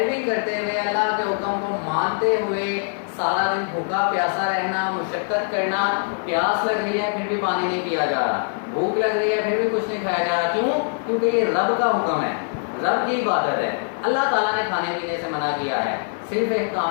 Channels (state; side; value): silent; right; 55 dB below the other